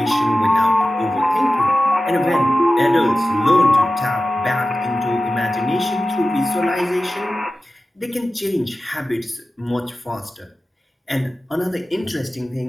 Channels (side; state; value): both; normal; correlation 0.95